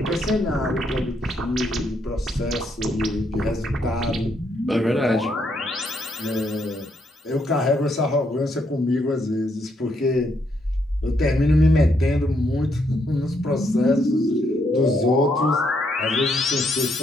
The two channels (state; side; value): normal; both; correlation 0.75